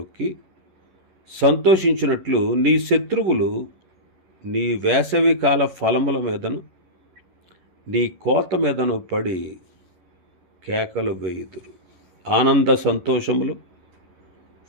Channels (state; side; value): late; left; 11 ms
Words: సంతోషించినట్లు నీ శత్రువులు నీ వేసవికాల ఫలముల మీదను నీ కోత మీదను పడి కేకలు వేయుదురు. ఆనంద సంతోషములు